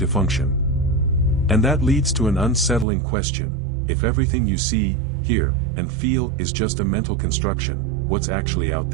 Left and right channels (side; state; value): left; drops out; at 2.9 s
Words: function. And that leads to an unsettling question: if everything you see, hear, and feel is just a mental construction, what's actually out